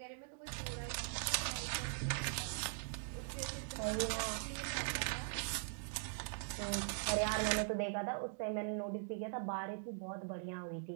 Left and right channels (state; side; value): silent; left; digital silence